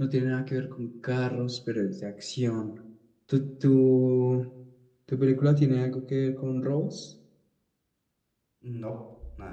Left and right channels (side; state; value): both; identical; correlation 1.00